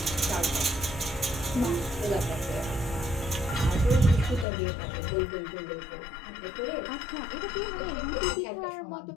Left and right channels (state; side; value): drops out; right; at 4.5 s